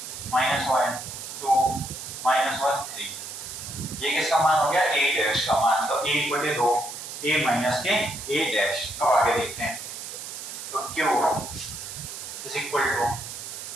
माइनस 1 2 माइनस 1 3। ये किसका मान हो गया ए डैश का मान, तो ए बटे 2 ए माइनस के ए डैश। तो आगे देखते हैं, तो क्यू इज इक्वल टू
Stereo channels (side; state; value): right; noise; hiss, 9 dB below the sound